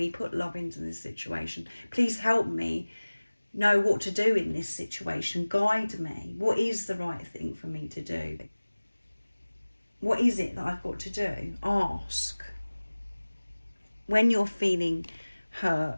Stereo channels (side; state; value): both; inverted; correlation -1.00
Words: put love into this situation. Please help me know what to do in this situation. Guide me. What is the right thing for me to do? What is it that I've got to do? Ask. When you're feeling